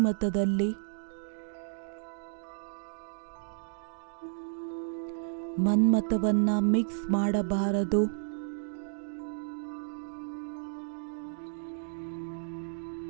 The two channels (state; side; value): silent; left; digital silence